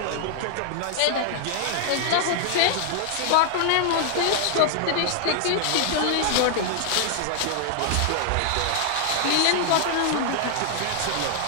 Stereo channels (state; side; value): different; both; correlation 0.00